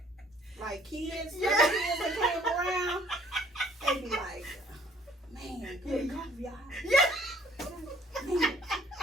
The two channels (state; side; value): normal; both; correlation 0.57